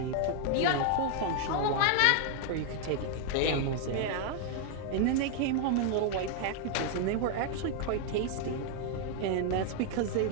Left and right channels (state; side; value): different; both; correlation 0.00